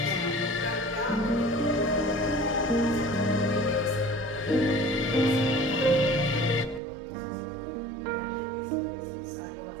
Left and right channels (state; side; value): drops out; left; at 6.8 s